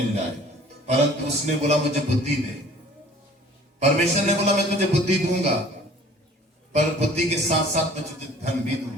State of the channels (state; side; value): normal; both; correlation 0.50